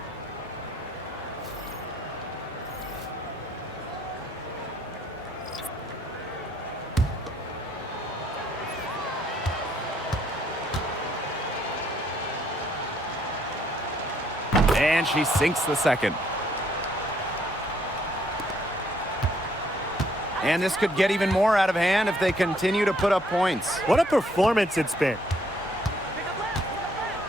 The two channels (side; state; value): both; normal; correlation 0.67